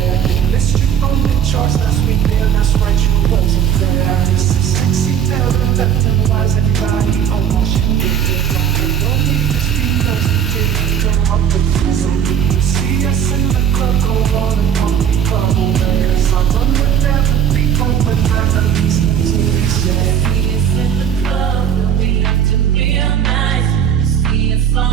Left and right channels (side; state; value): left; quieter; 8.7 dB